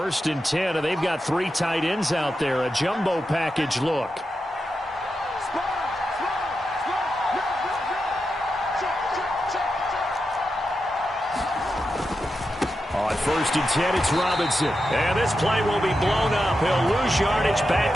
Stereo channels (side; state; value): both; normal; correlation 0.88